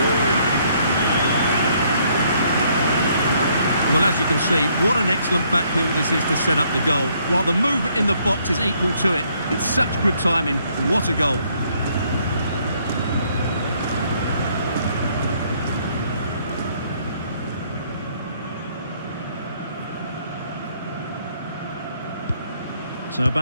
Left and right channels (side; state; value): both; inverted; correlation -0.68